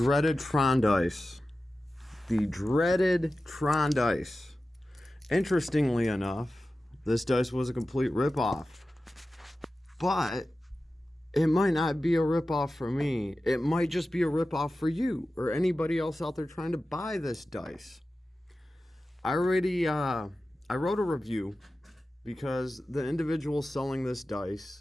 Tron dice. The dreaded Tron dice. Interestingly enough, this dice was a complete ripoff. But it might not be a ripoff for me. It might just be a ripoff for you or anybody else out there trying to buy this dice. I wrote a review because the individual selling this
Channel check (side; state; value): both; normal; correlation 0.94